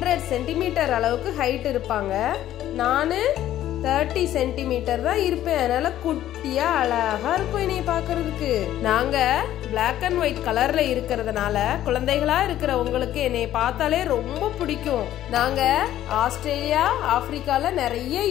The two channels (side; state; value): right; quieter; 12.6 dB